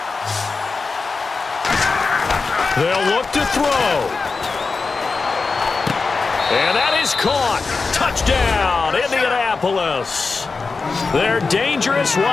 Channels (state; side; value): quieter; right; 4.3 dB